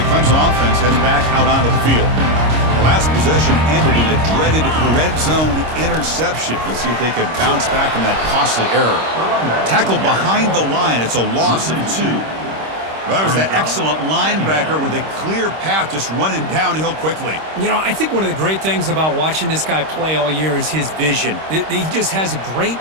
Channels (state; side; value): late; left; 26 ms